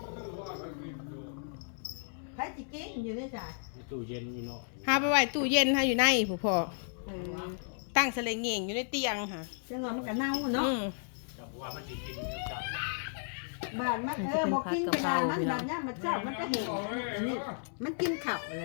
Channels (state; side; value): silent; right; 55 dB below the other